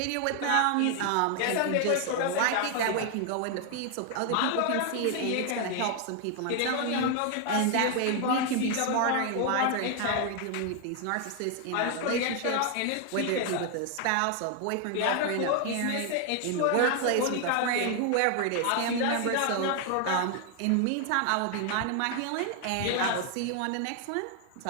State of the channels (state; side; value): different; both; correlation 0.00